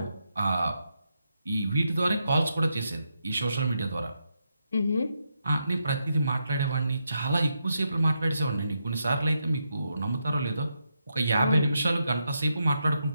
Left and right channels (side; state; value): both; inverted; correlation -0.83